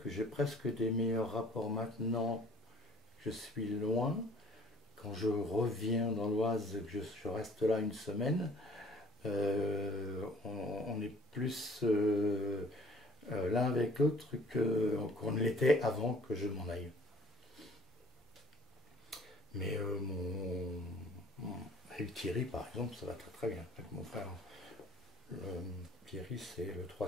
que j'ai presque des meilleurs rapports maintenant que je suis loin. Quand je reviens dans l'Oise, que je reste là une semaine, on est plus l'un avec l'autre qu'on ne l'était avant que je m'en aille. Mais avec Thierry, par exemple, ça va très très bien. Avec mon frère, Thierry, c'est le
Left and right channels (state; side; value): normal; both; correlation 0.54